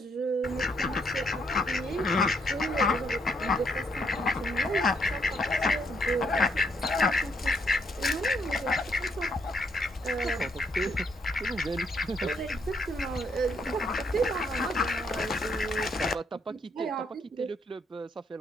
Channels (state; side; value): normal; both; correlation 0.72